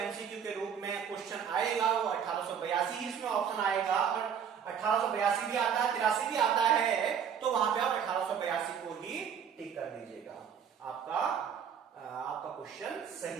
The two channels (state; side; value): quieter; left; 7.8 dB